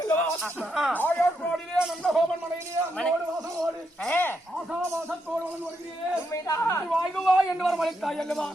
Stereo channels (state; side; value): normal; both; correlation 0.81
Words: ஆயர்வாடியிலே நந்தகோபன் மனையிலே வாசமோடு ஆசாவாசத்தோடு வருகிறேன் வாயுவாய் என்று வரவழைத்தாய் அல்லவா